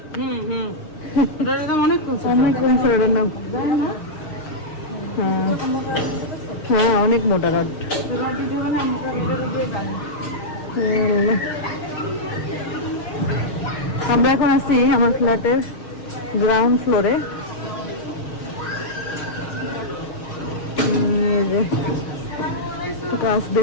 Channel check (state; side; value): late; right; 6.6 ms